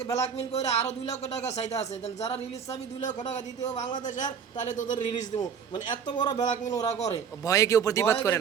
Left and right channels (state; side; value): quieter; left; 7.0 dB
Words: ব্ল্যাকমেল করে আরো 2 লক্ষ টাকা চাইতে আছে, যারা রিলিজ চাবি 2 লক্ষ টাকা দিতে হবে বাংলাদেশের, তাহলে তোদের রিলিজ দেবো। মানে এত বড় ব্ল্যাকমেল ওরা করে, ভয়ে কেউ প্রতিবাদ করে